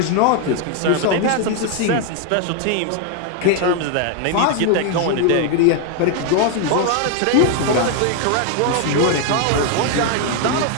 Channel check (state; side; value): different; both; correlation 0.01